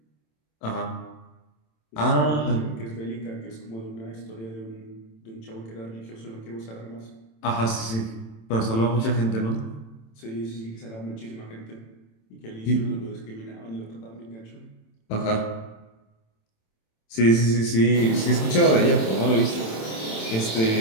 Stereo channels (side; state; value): right; late; 27 ms